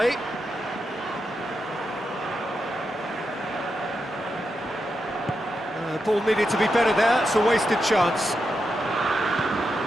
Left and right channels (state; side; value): normal; both; correlation 0.86